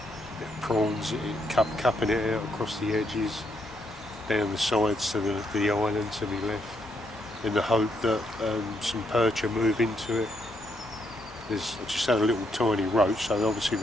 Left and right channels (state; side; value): normal; both; correlation 0.76